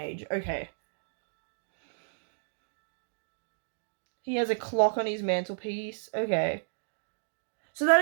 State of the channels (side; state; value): left; silent; digital silence